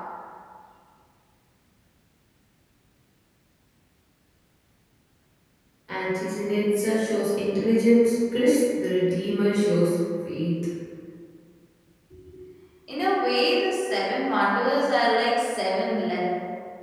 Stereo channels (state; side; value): identical; both; correlation 1.00